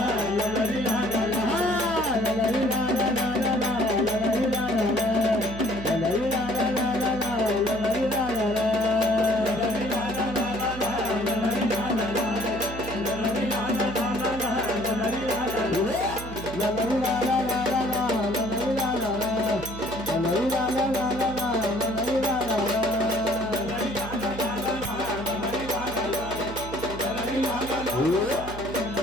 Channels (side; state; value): right; noise; hum, 11 dB below the sound